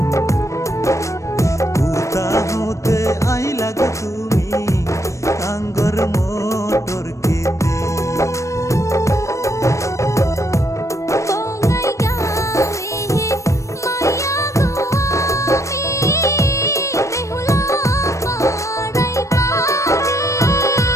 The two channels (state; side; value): late; right; 0.15 ms